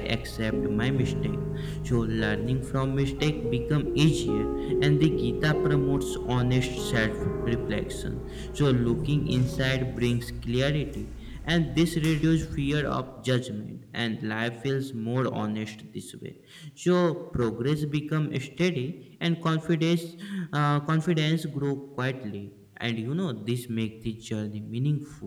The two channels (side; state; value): both; identical; correlation 1.00